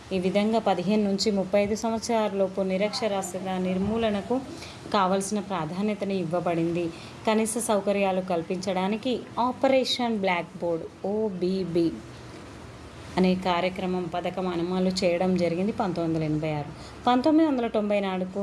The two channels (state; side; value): identical; both; correlation 1.00